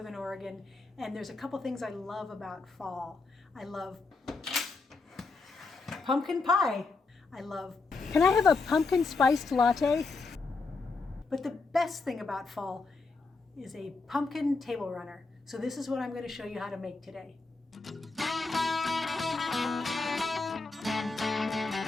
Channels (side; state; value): right; quieter; 3.9 dB